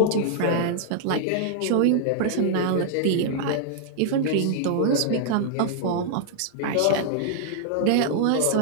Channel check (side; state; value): both; different; correlation -0.01